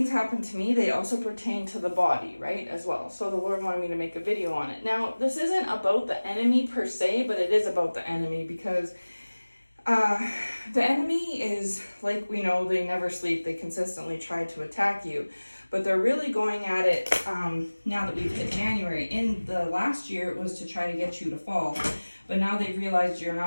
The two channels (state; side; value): inverted; both; correlation -1.00